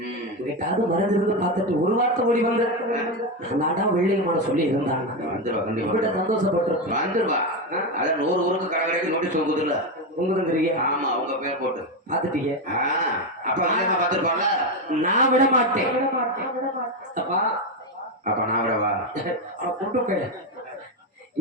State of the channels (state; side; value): normal; both; correlation 0.10